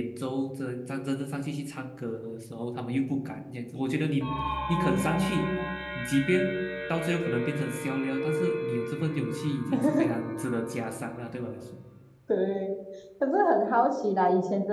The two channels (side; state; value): both; identical; correlation 1.00